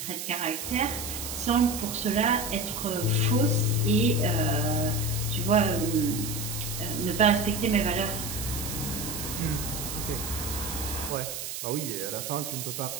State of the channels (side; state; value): right; noise; hiss, 6 dB below the sound